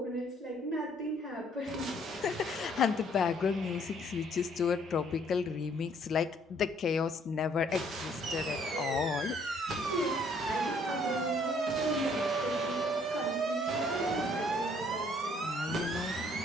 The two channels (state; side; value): normal; both; correlation 0.63